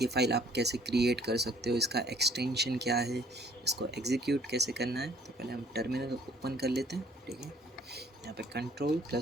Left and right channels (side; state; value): both; normal; correlation 0.60